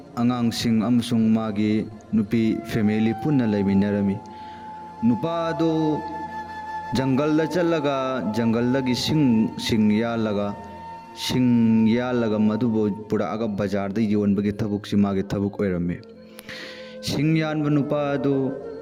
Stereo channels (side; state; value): both; identical; correlation 1.00